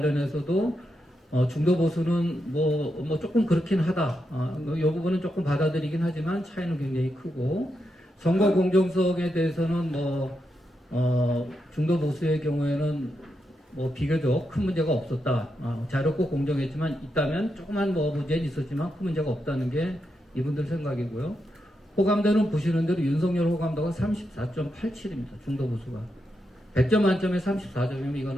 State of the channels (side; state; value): both; normal; correlation 0.85